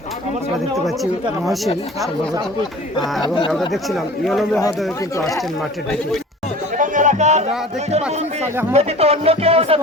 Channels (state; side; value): normal; both; correlation 0.42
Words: আমরা দেখতে পাচ্ছি মহসিন সম্ভবত এবং আমরা দেখছিলাম ইয়নো মহোদয় কিন্তু আসছেন মাঠের দিকে। আমরা দেখতে পাচ্ছি সালেহ আহমদ